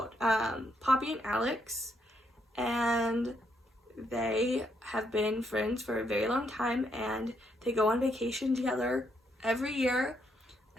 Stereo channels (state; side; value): normal; both; correlation 0.76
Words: Poppy and Alex, and they have been friends for a very long time, and they go on vacation together every year,